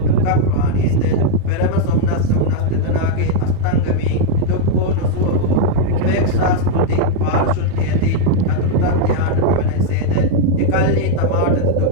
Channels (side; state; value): both; different; correlation 0.00